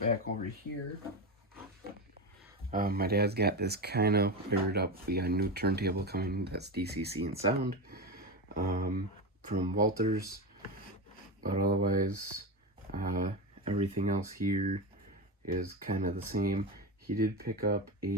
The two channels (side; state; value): both; normal; correlation 0.18